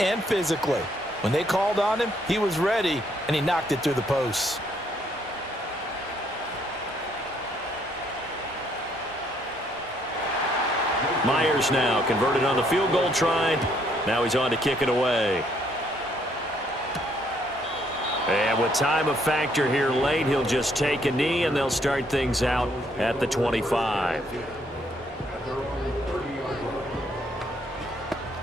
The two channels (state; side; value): normal; both; correlation 0.69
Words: physically. When they called on him, he was ready, and he knocked it through the posts. Myers now converted on the field goal try. Now he's on to kick it away. And with time a factor here late, he'll just take a knee, and they'll start things out at the 25.